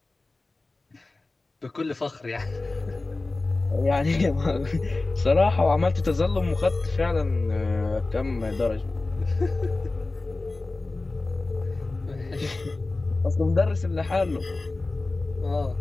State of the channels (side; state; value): right; quieter; 3.2 dB